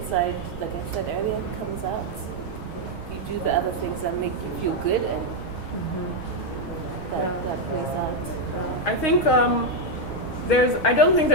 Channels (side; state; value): right; late; 6.3 ms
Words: like I said earlier, comes out. You do the other things that make you feel good, and that plays out. I think I don't think